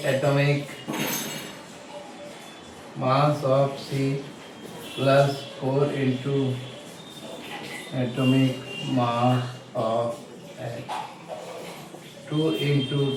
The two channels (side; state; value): both; identical; correlation 1.00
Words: atomic mass of C plus 4 into atomic mass of H. 2